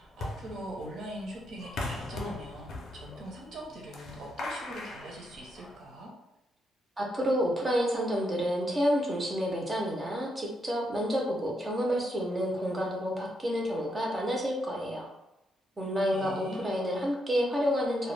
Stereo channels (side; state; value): both; normal; correlation 0.80